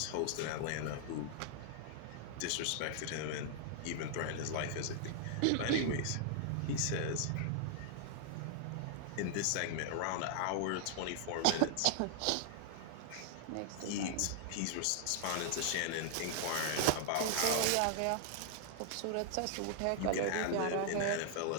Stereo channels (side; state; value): both; different; correlation 0.00